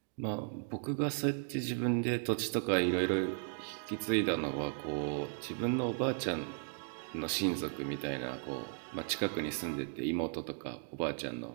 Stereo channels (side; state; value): left; silent; 54 dB below the other